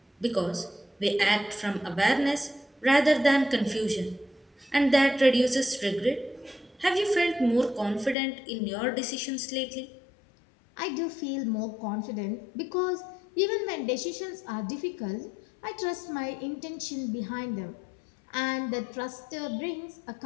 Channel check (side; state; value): right; drops out; at 8.2 s